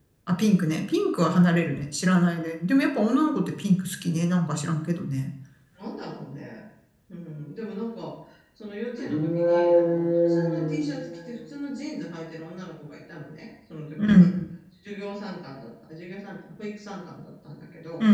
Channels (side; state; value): both; identical; correlation 1.00